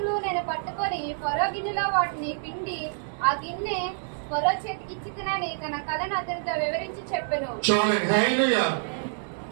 నేను పట్టుకొని ఫరో గిన్నెలో వాటిని పిండి ఆ గిన్నె ఫరో చేతికి ఇచ్చి తినని తన కథను అతనితో వివరించి చెప్పెను. చూడండి. హల్లెలూయా.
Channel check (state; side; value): silent; left; digital silence